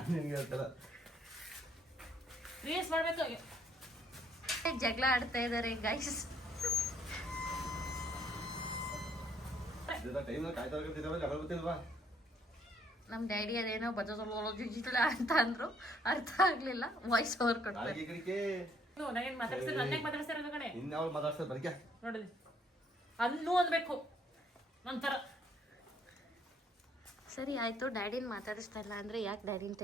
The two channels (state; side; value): normal; both; correlation 0.66